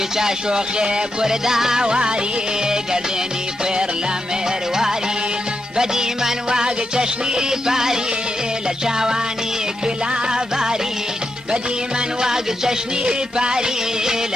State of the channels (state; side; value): normal; both; correlation 0.85